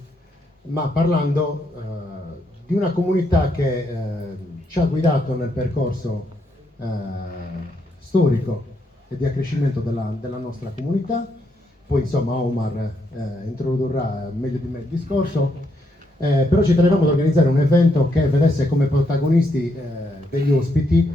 ma parlando di una comunità che ci ha guidato nel percorso storico e di accrescimento della nostra comunità. Poi insomma Omar introdurrà meglio di me il discorso, però ci tenevamo ad organizzare un evento che vedesse come protagonisti degli ospiti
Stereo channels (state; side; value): normal; both; correlation 0.77